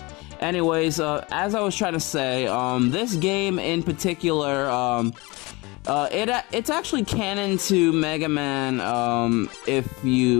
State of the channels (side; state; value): right; quieter; 24.5 dB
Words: Anyways, as I was trying to say, this game in particular, it's actually canon to Mega Man, if